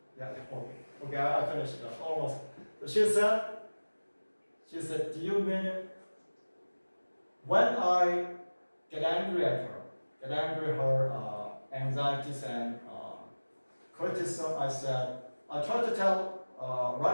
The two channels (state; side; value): inverted; both; correlation -1.00